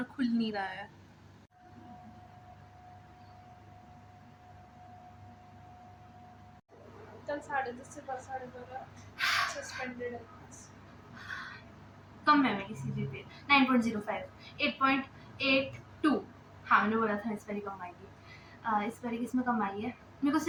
खुल नहीं रहा है। कल 10:30 से 12:30 सस्पेंडेड है क्लास। कम है मेरी CGPA 9.05, 8.82। हाँ, मैंने बोला था इस बारी कम आएगी। इस बारी किसमें कम आई है? मेरे को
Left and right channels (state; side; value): identical; both; correlation 1.00